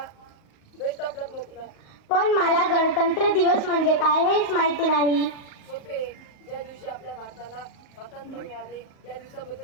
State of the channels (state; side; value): late; right; 38 ms